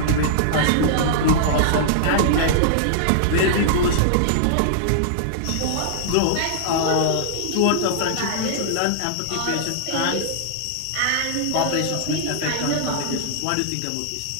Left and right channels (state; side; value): different; both; correlation -0.01